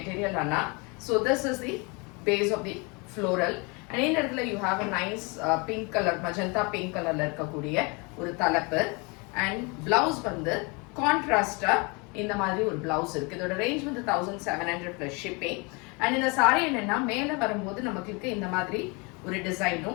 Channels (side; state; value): right; quieter; 29.7 dB